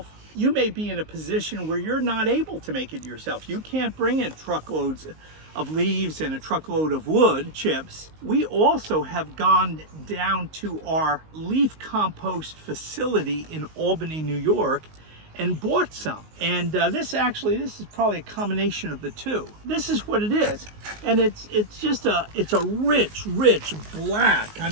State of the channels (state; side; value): late; left; 19 ms